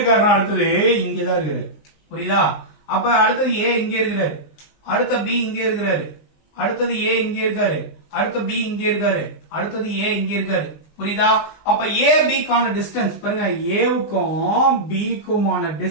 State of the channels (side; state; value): right; late; 20 ms